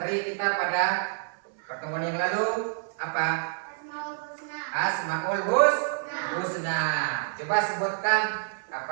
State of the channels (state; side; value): silent; left; digital silence